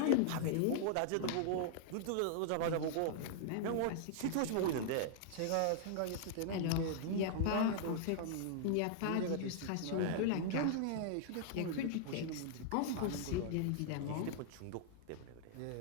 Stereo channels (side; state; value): both; different; correlation -0.01